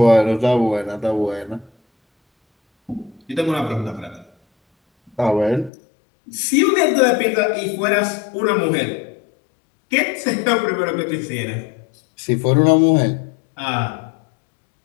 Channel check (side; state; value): right; drops out; at 5.7 s